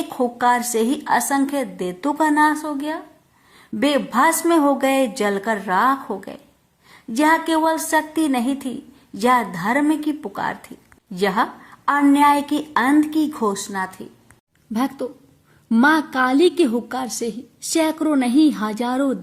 हुक्कार से ही असंख्य दैत्यों का नाश हो गया। वे भस्म हो गए, जलकर राख हो गए। यह केवल शक्ति नहीं थी, यह धर्म की पुकार थी, यह अन्याय की अंत की घोषणा थी। भक्तों, माँ काली के हुक्कार से ही सैकड़ों नहीं हजारों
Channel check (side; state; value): both; identical; correlation 1.00